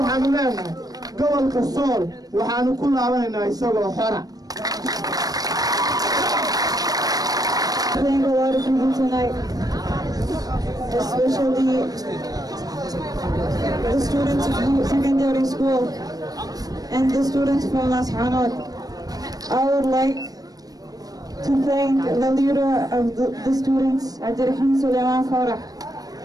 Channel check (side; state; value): left; late; 0.18 ms